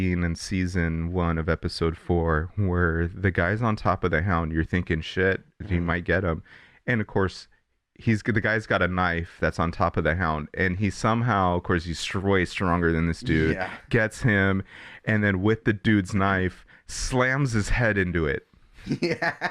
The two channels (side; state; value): both; identical; correlation 1.00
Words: in season 1 of episode 4 where the guy's on top of the hound. You're thinking, shit, he might get him. And of course, the guy's got a knife that's on top of the hound, and he somehow, of course, he's way stronger than this dude, gets him, and then with the dude's knife, slams his head into it.